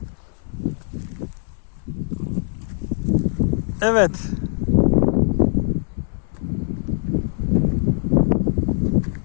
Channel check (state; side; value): silent; right; 64 dB below the other